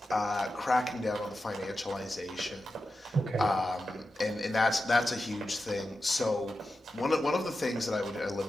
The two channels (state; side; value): normal; both; correlation 0.91